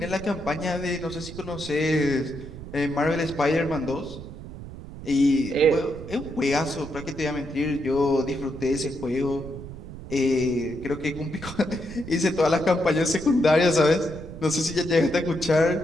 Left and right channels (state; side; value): noise; right; rumble, 12 dB below the sound